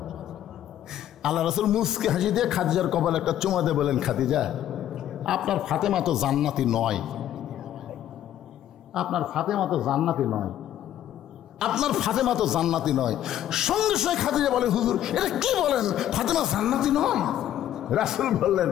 আল্লাহ রাসূল মুস্কি হাসি দিয়ে খাদিজার কপালে একটা চুমা দিয়ে বলেন, খাদিজা আপনার ফাতেমা তো জান্নাতি নয়, আপনার ফাতেমা তো জান্নাতি নয়, আপনার ফাতেমা তো জান্নাতি নয়। সঙ্গে সঙ্গে খাদিজা বলে, হুজুর এটা কি বলেন, ফাতেমা জান্নাতি নয়? রাসূল বললেন,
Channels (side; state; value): right; quieter; 11.7 dB